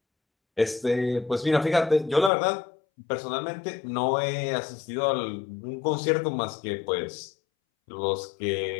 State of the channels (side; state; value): right; drops out; at 2.3 s